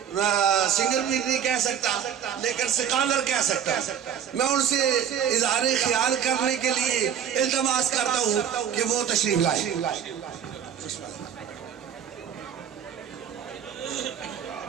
سنگر بھی نہیں کہہ سکتا لیکن سکالر کہہ سکتا، میں ان سے اظہار خیال کرنے کے لیے التماس کرتا ہوں کہ وہ تشریف لائیں۔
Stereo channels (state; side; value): quieter; left; 8.8 dB